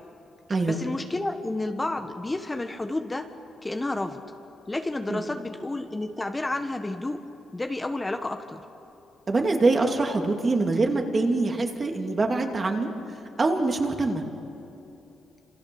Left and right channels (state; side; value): normal; both; correlation 0.91